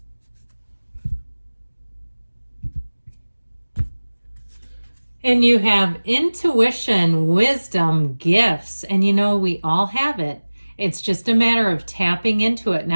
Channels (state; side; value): inverted; both; correlation -1.00